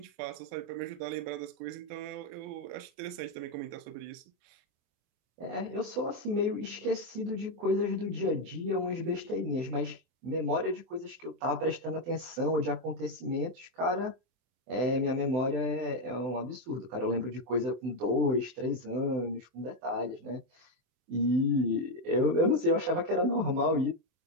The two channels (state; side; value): late; left; 24 ms